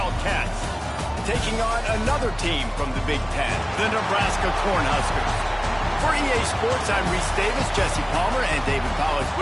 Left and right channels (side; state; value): both; identical; correlation 1.00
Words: taking on another team from the Big Ten, the Nebraska Cornhuskers. For EA Sports, I'm Reese Davis, Jesse Palmer, and David Powell is